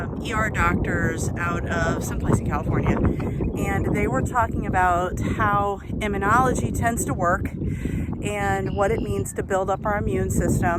ER doctors out of someplace in California, and they were talking about how immunology tends to work and what it means to build up our immune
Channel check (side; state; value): both; identical; correlation 1.00